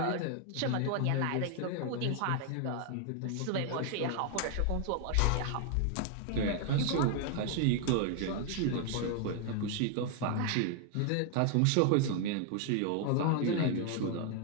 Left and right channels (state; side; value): different; both; correlation 0.00